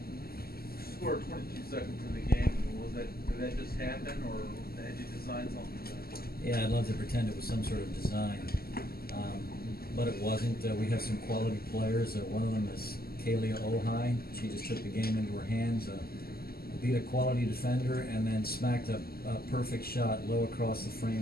Scored 22 seconds in the game. Did that just happen, or had you designed something? Yeah, I'd love to pretend it was some sort of design, but it wasn't. We have some quality players. One of them is Kalia Ohai. She just took the game into her hands, beat a quality defender, and then smacked a perfect shot low across the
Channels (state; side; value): late; right; 0.45 ms